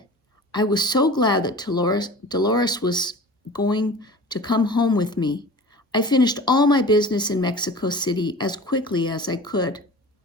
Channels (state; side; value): normal; both; correlation 0.39